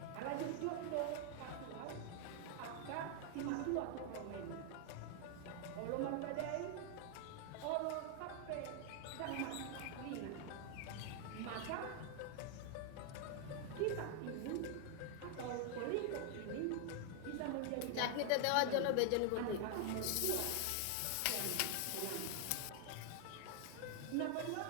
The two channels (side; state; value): both; different; correlation 0.00